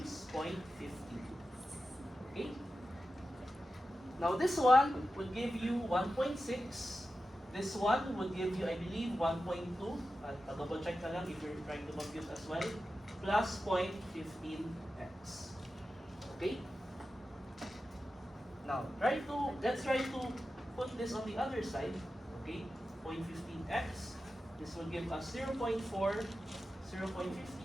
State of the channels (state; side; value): normal; both; correlation 0.92